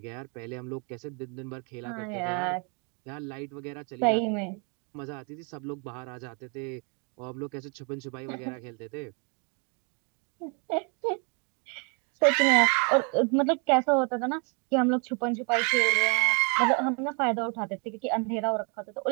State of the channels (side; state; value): left; quieter; 36.0 dB